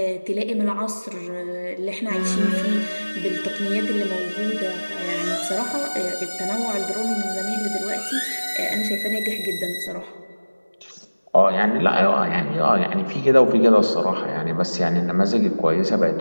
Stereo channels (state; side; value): inverted; both; correlation -1.00